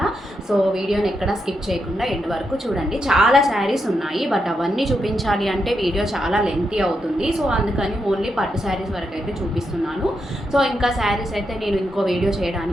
సో వీడియోని ఎక్కడా స్కిప్ చేయకుండా ఎండ్ వరకు చూడండి. చాలా శారీస్ ఉన్నాయి, బట్ అవన్నీ చూపించాలి అంటే వీడియో చాలా లెంతీ అవుతుంది. సో అందుకని ఓన్లీ పట్టు శారీస్ వరకు అయితే చూపిస్తున్నాను. సో ఇంకా శారీస్ అయితే నేను ఇంకో వీడియో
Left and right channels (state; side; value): normal; both; correlation 0.83